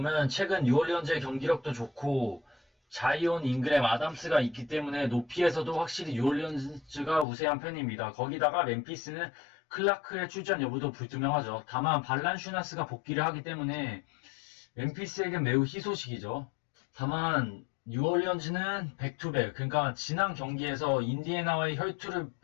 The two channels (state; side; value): drops out; right; at 7.2 s